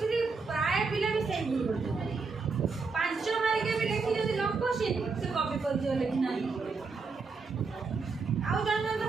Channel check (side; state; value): left; quieter; 4.6 dB